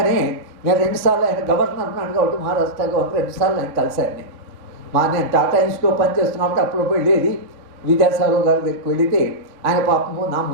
నేను 2 సార్లు ఆయన గవర్నర్ ఉన్నాడు కాబట్టి మహారాష్ట్ర గవర్నర్ 2 సార్లు ఆయన కలిశాను. నేను టాటా ఇన్స్టిట్యూట్లో పనిచేస్తున్నప్పుడు అప్పుడు వెళ్ళేది విద్యాసాగర్ గారి దగ్గరికి వెళితే ఆయన పాపము నా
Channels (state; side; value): late; left; 3.4 ms